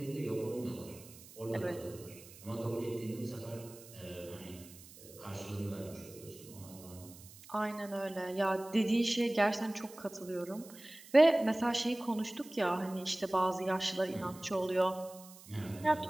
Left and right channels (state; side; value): noise; right; hiss, 19 dB below the sound